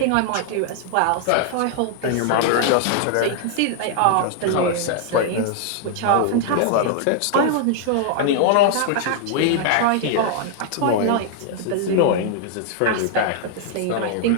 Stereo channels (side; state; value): both; different; correlation 0.00